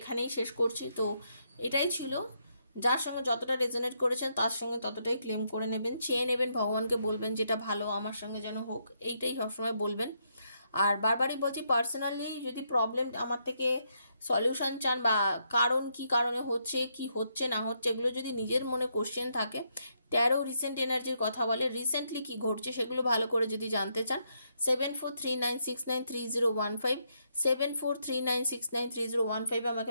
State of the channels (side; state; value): both; inverted; correlation -0.77